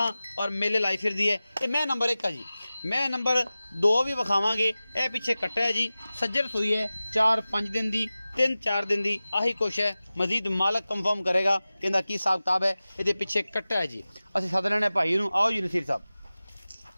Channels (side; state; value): both; inverted; correlation -0.96